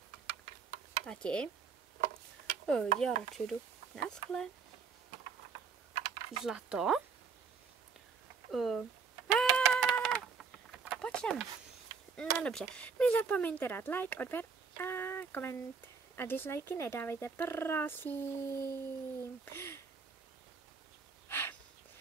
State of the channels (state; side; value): quieter; left; 5.6 dB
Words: Tati? Já radši jdu. Naschle. Zlato? Pojď sem. No dobře. Nezapomeňte dát like, odběr a koment. A dislikey nedávejte, prosím.